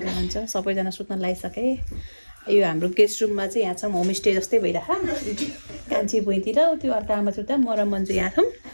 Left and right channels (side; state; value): both; inverted; correlation -1.00